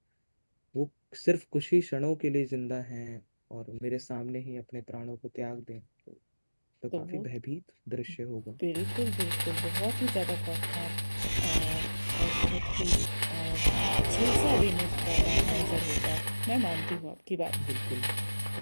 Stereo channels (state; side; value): inverted; both; correlation -1.00